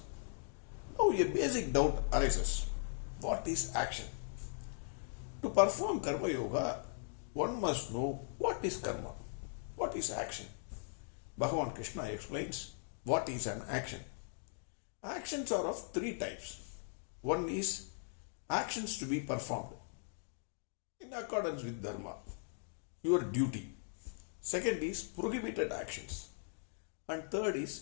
Now a basic doubt arises. What is action? To perform Karma Yoga, one must know what is karma, what is action. Bhagavan Krishna explains what is an action. Actions are of three types. One is actions to be performed in accordance with dharma, your duty. Second is prohibited actions. And third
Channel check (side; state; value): right; silent; digital silence